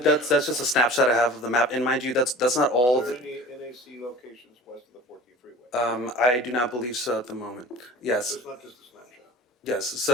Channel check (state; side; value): normal; both; correlation 0.41